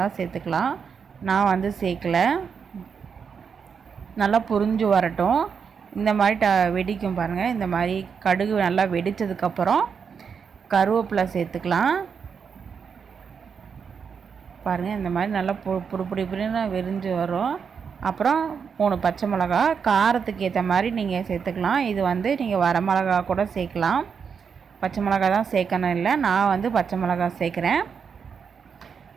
சேர்த்துக்கலாம். நான் வந்து சேர்க்கலை. நல்லா புரிஞ்சு வரட்டும். இந்த மாதிரி வெடிக்கும் பாருங்கள். இந்த மாதிரி கடுகு நல்லா வெடித்ததுக்கப்புறம் கருவேப்பிலை சேர்த்துக்கலாம். பாருங்கள், இந்த மாதிரி நல்லா புடிப்புடின்னு வெறிஞ்சு வரும். அப்புறம் 3 பச்சை மிளகா, காரத்துக்கு ஏற்ற மாதிரி நீங்கள் சேர்த்துக்கலாம். இது வந்து நீங்கள் வரமிளகா கூட சேர்க்கலாம். பச்சை மிளகா தான் சேர்க்கணும் இல்லை, நான் வந்து பச்சை மிளகா சேர்க்குறேன்.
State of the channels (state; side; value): quieter; left; 6.4 dB